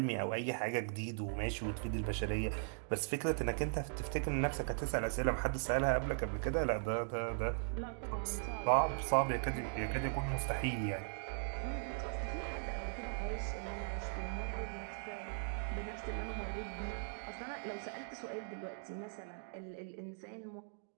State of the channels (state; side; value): silent; left; digital silence